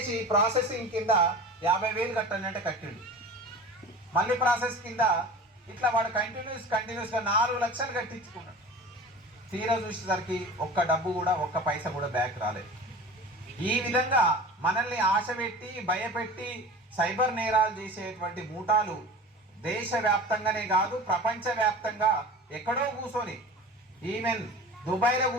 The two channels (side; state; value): both; normal; correlation 0.37